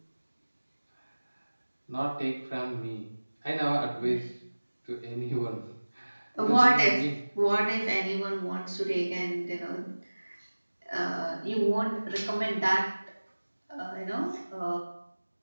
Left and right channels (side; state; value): both; inverted; correlation -1.00